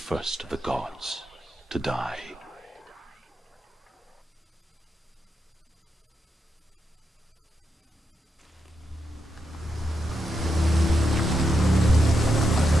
of the gods to die.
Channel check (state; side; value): normal; both; correlation 0.84